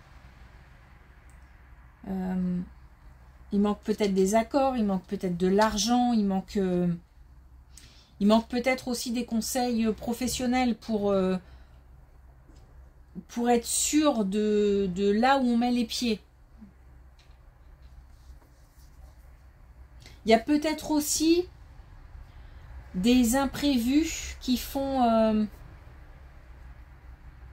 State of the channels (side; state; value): both; identical; correlation 1.00